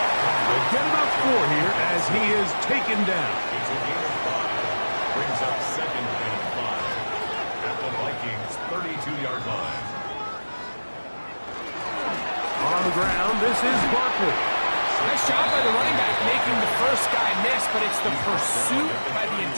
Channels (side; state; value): both; inverted; correlation -1.00